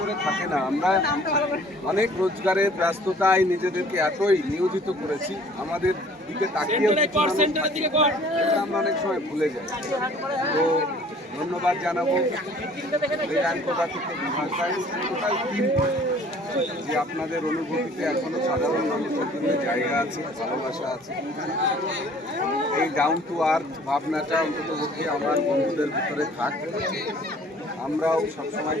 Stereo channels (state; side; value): normal; both; correlation 0.53